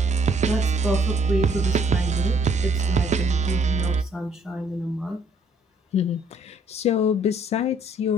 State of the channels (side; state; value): both; normal; correlation 0.64